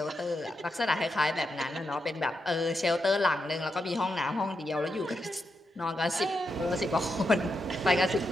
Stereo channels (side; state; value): both; normal; correlation 0.85